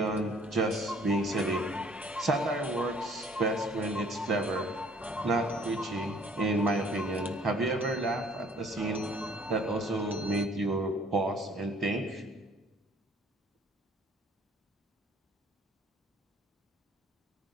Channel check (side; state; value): both; normal; correlation 0.57